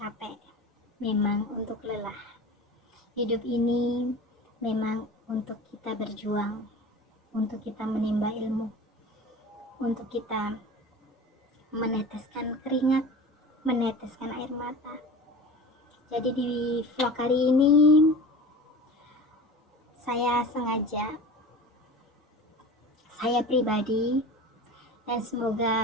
memang untuk lelah. Hidup ini memang untuk kita berjuang, untuk kita menimba ilmu, untuk kita meneteskan keringat, meneteskan air mata. Jadi di vlog kali ini saya pribadi, dan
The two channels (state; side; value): normal; both; correlation 0.36